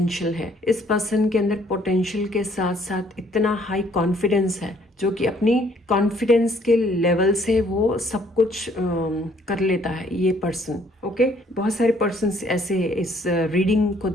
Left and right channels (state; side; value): normal; both; correlation 0.63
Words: है, इस पर्सन के अंदर पोटेंशियल के साथ साथ इतना हाई कॉन्फिडेंस है जो कि अपनी कॉन्फिडेंस के लेवल से वो सब कुछ कर लेता है ये पर्सन। ओके, बहुत सारे पर्सन ऐसे इस रीडिंग को